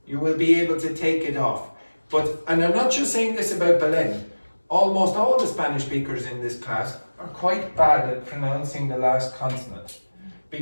You will be able to take it off. But, and I'm not just saying this about Belen, almost all the Spanish speakers in this class are quite bad at pronouncing the last consonant.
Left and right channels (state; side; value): inverted; both; correlation -1.00